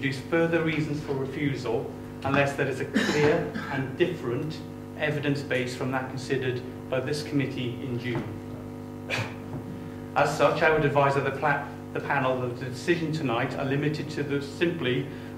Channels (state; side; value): identical; both; correlation 1.00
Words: further reasons for refusal unless there is a clear and different evidence base from that considered by this committee in June. As such, I would advise that the panel that the decision tonight are limited to simply